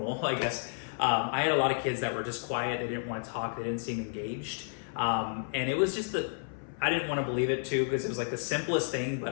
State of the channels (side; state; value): right; silent; 57 dB below the other